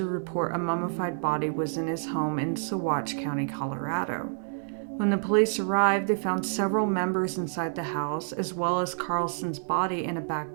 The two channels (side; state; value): left; silent; 59 dB below the other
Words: report a mummified body was in his home in Saguache County, Colorado. When the police arrived, they found several members inside the house, as well as Carlson's body in a